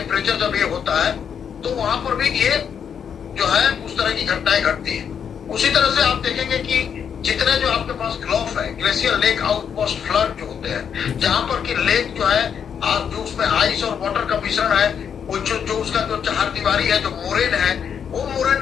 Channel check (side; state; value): right; quieter; 7.7 dB